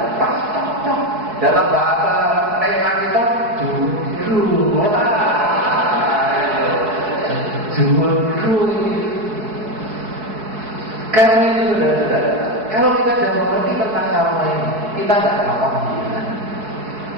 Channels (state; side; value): late; left; 4.7 ms